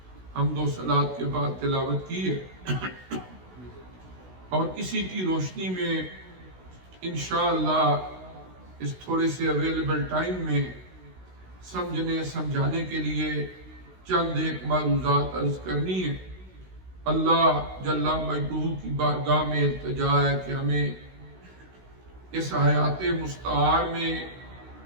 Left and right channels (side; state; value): left; late; 16 ms